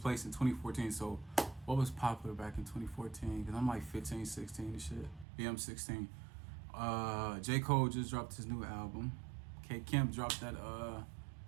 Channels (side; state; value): left; drops out; at 5.2 s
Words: in 2014. So what was popular back in 2014? Cause I'm like 15, 16 and shit. Yeah, I'm 16. J. Cole just dropped his new album. K. Kemp dropped that